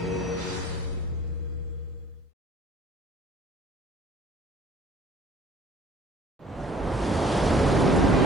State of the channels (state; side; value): normal; both; correlation 0.53